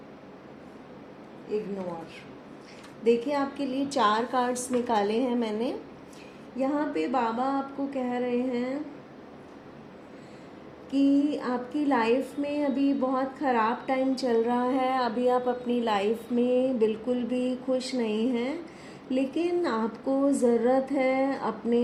ignore. देखिए, आपके लिए 4 कार्ड्स निकाले हैं मैंने। यहाँ पे बाबा आपको कह रहे हैं कि आपकी लाइफ में अभी बहुत ख़राब टाइम चल रहा है। अभी आप अपनी लाइफ में बिल्कुल भी खुश नहीं हैं, लेकिन आपको ज़रूरत है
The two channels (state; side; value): identical; both; correlation 1.00